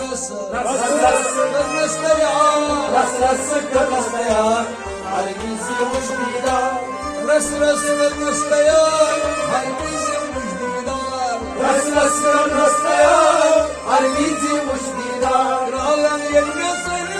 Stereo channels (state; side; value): identical; both; correlation 1.00